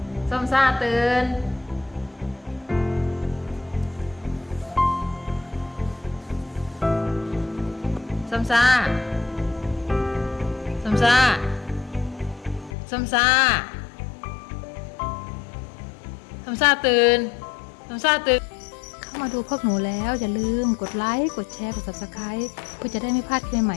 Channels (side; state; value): right; drops out; at 12.8 s